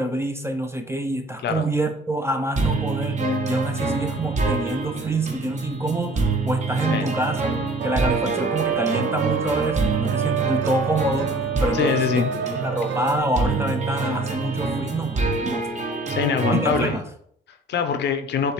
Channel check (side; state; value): both; normal; correlation 0.50